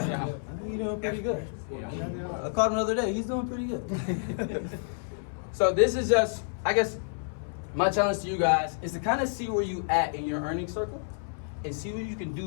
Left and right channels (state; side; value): silent; right; 58 dB below the other